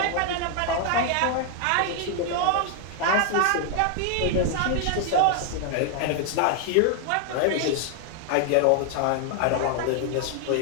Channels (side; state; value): both; different; correlation 0.00